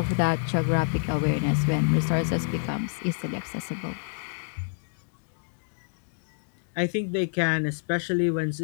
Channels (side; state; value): right; silent; digital silence